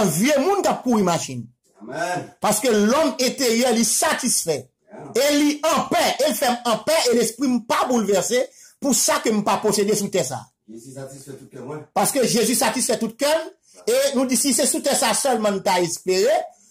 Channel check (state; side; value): identical; both; correlation 1.00